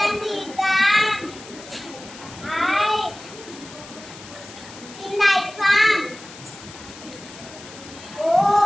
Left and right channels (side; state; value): left; noise; hiss, 17 dB below the sound